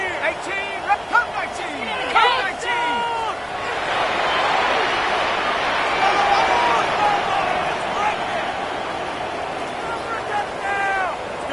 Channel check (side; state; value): both; identical; correlation 1.00